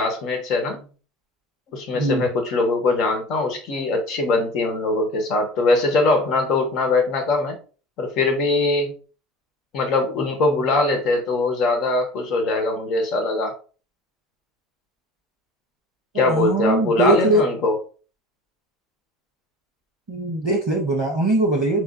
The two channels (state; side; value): normal; both; correlation 0.39